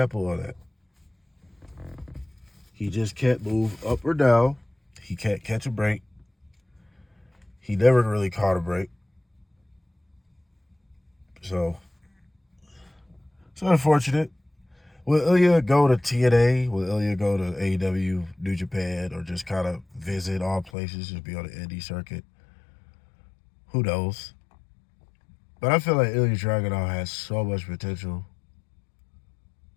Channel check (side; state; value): right; drops out; at 20.7 s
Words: of that. He just can't move up or down. He can't catch a break. He never really caught a break. So it's unfortunate. Will Ilja go to TNA? Will Ilja go to AEW, New Japan, or just kind of visit all places, just be on the indie circuit? Who knows? But I feel like Ilja Dragunov has so much potential.